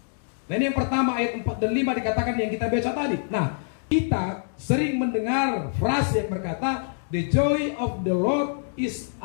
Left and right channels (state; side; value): silent; right; digital silence